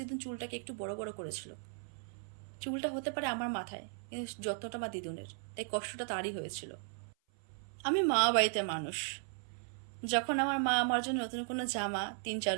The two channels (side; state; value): left; silent; 53 dB below the other